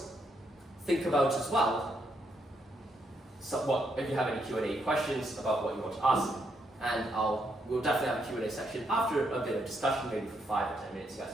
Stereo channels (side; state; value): both; normal; correlation 0.77